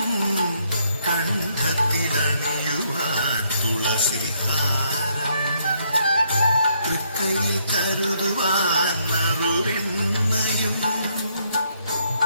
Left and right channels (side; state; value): both; inverted; correlation -0.72